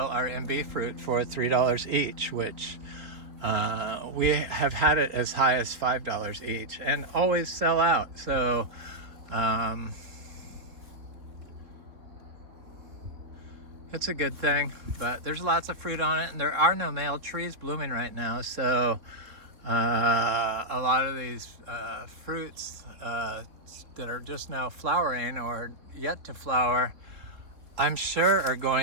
our Imbe fruit for $3 each, which we have had it as high as $5 each and always sell out. So it's a good thing, but there's lots of fruit on it, and there are no male trees blooming right now. So a lot of these fruits that are just now flowering or yet to flower I'm sure are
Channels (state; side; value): late; left; 3.6 ms